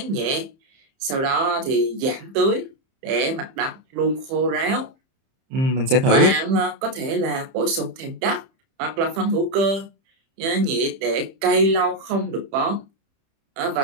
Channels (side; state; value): left; late; 30 ms